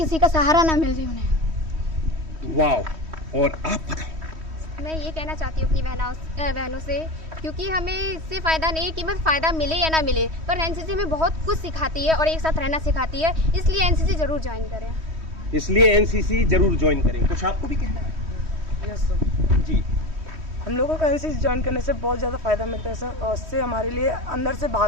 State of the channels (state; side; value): late; left; 3.1 ms